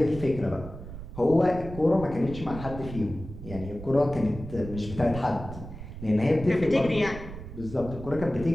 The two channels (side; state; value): right; noise; rumble, 11 dB below the sound